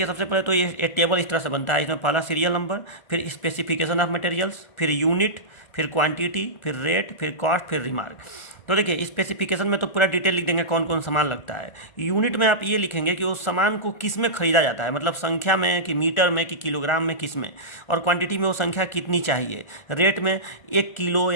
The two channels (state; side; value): late; right; 1.4 ms